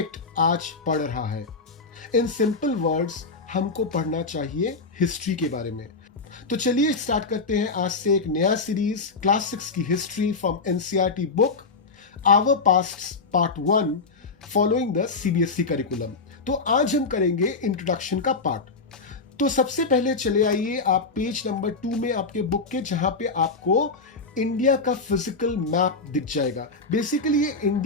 आज पड़ रहा है। इन सिंपल वर्ड्स हमको पढ़ना चाहिए हिस्ट्री के बारे में। तो चलिए स्टार्ट करते हैं आज से एक नया सीरीज, क्लास 6 की history from NCERT book our past part 1 following the CBSE curriculum. तो आज हम करेंगे इंट्रोडक्शन का पार्ट। तो सबसे पहले चले आइए आप पेज नंबर 2 में आपके बुक के, जहां पे आपको इंडिया का फिजिकल मैप दिख जाएगा। बेसिकली ये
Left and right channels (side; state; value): right; quieter; 4.1 dB